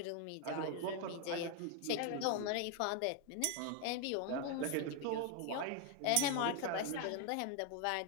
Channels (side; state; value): both; different; correlation 0.01